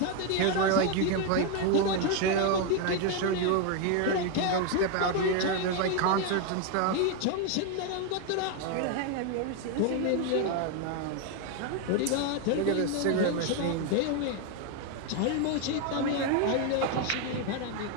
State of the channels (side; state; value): both; different; correlation 0.01